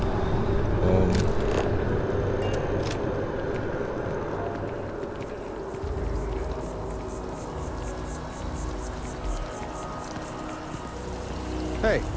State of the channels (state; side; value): identical; both; correlation 1.00